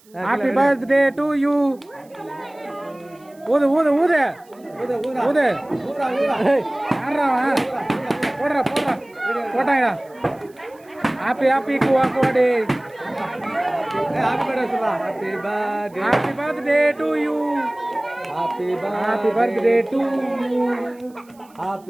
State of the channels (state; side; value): noise; right; hiss, 30 dB below the sound